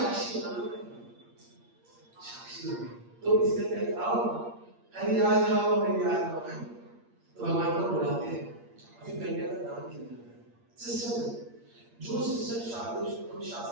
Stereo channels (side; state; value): left; late; 8.6 ms